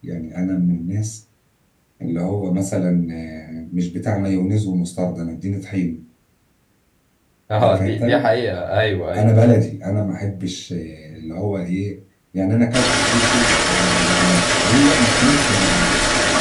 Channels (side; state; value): both; identical; correlation 1.00